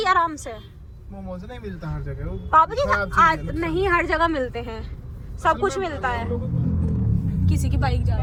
आराम से। मोमोज नहीं मिलता हर जगह वो पापा जी खराब चीज़ आज है, नहीं हर जगह मिलते हैं, सब कुछ मिलता है। किसी की बाइक जा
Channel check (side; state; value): both; identical; correlation 1.00